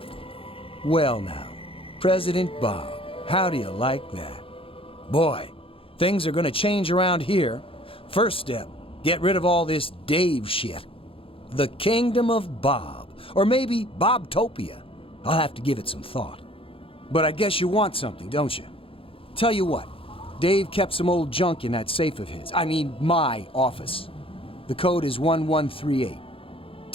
Well now, President Bob, how do you like that? Boy, things are gonna change around here. First step, get rid of all this Dave shit. The Kingdom of Bob, or maybe Bobtopia. I'll have to give it some thought. But I guess you want something, don't you? Tell you what, Dave kept some old junk in that safe of his. I mean, my office. The code is 1138.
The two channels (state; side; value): late; right; 0.27 ms